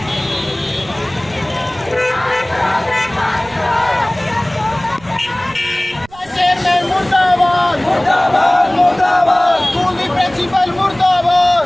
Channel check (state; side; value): noise; right; rumble, 25 dB below the sound